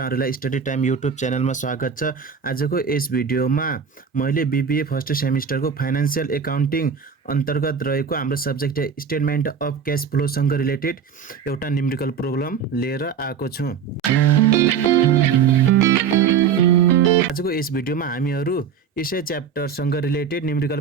स्टडी टाइम युट्युब च्यानलमा स्वागत छ। आजको यस भिडियोमा मैले बीबीए फर्स्ट सेमिस्टरको फाइनान्शियल एकाउन्टिङ अन्तर्गत रहेको हाम्रो subject statement of cash flow सँग रिलेटेड एउटा न्युमेरिकल प्रोब्लम लिएर आएको छु। आजको यस भिडियोमा हामीहरु यसै च्याप्टर सँग रिलेटेड न्युमेरिकल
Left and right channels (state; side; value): quieter; left; 6.8 dB